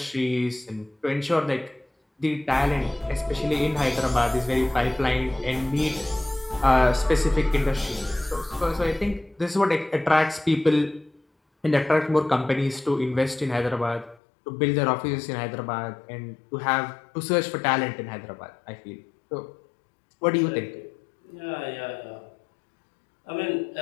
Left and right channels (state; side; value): drops out; right; at 14.2 s